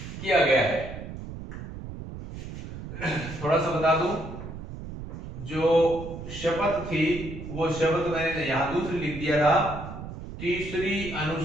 किया गया है। थोड़ा सा बता दूं, जो शपथ थी वो शपथ मैंने यहां दूसरी लिख दिया था, तीसरी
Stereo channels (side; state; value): right; noise; rumble, 10 dB below the sound